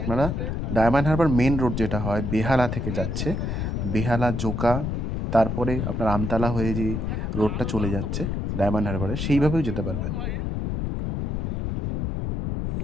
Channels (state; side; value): noise; left; rumble, 1 dB below the sound